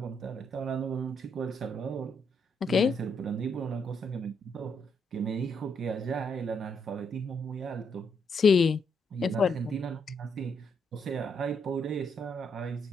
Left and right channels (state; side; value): normal; both; correlation 0.76